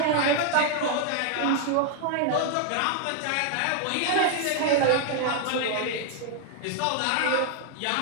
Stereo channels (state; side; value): different; both; correlation 0.00